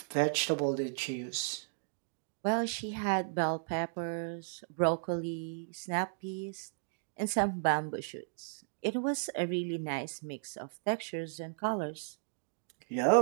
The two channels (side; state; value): left; silent; digital silence